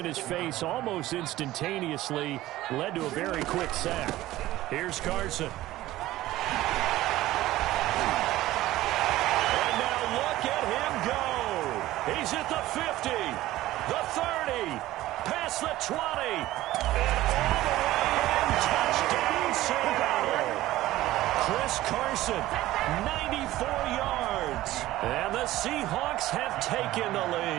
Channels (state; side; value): quieter; left; 15.9 dB